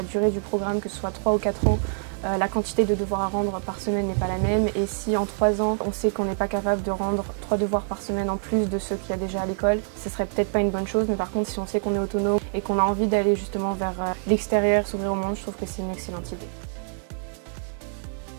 durée du programme, que ce soit 3 ou 4 ans, la quantité de devoirs à rendre par semaine n'est pas la même. Et si en 3 ans, on sait qu'on n'est pas capable de rendre 3 devoirs par semaine en plus de ceux qu'il y a déjà à l'école, ce serait peut-être pas une bonne chose. Mais par contre, si on sait qu'on est autonome et qu'on a envie d'aller justement vers l'extérieur, s'ouvrir au monde, je trouve que c'est une excellente idée.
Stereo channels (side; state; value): left; silent; 61 dB below the other